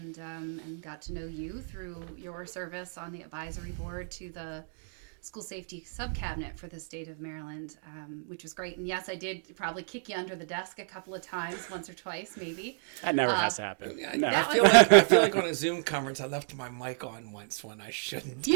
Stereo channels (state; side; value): silent; left; digital silence